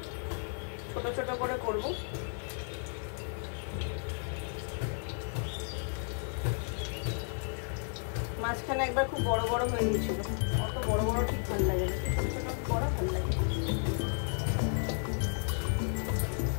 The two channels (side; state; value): right; silent; 56 dB below the other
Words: ছোট ছোট করে করব। মাঝখানে একবার খুব বড় বড় হয়ে গেছিল, অত বড় বড় ঠিক ভালো লাগে না, ছোট ছোট বড় ভালো লাগে।